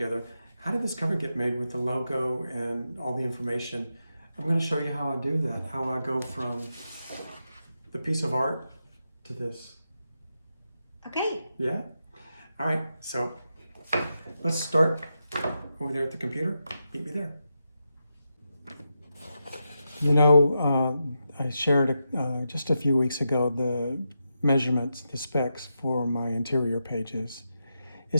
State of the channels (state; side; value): inverted; both; correlation -0.87